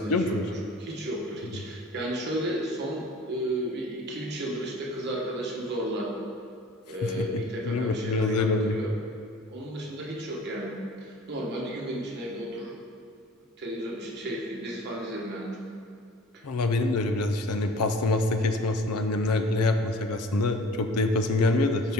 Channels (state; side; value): normal; both; correlation 0.46